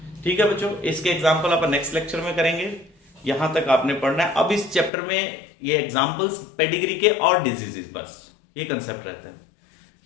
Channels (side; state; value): right; drops out; at 4.9 s